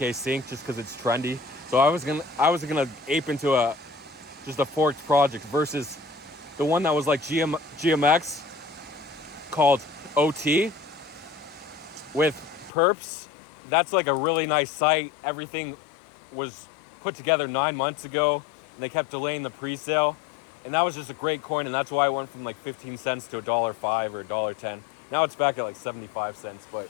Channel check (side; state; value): right; drops out; at 12.7 s